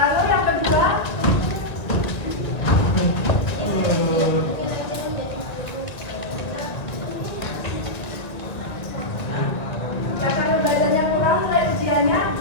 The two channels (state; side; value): late; right; 1.9 ms